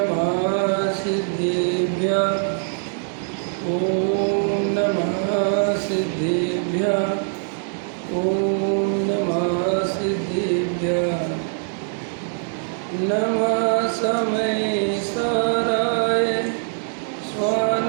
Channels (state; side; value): silent; left; digital silence